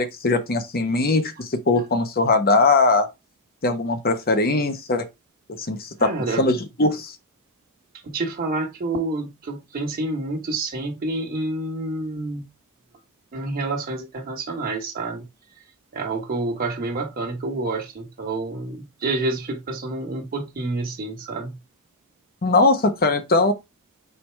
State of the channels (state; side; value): normal; both; correlation -0.03